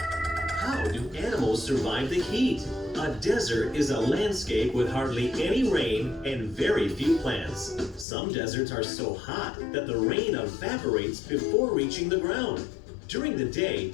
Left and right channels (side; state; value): right; drops out; at 8.1 s